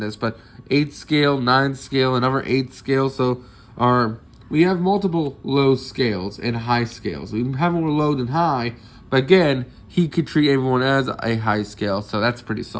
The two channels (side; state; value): both; identical; correlation 1.00